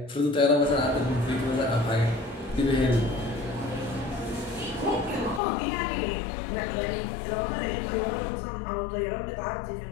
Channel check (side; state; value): right; drops out; at 5.4 s